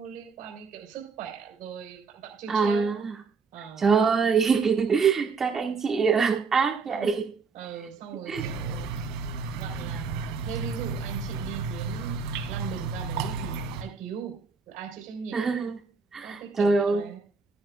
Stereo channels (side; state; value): left; quieter; 5.0 dB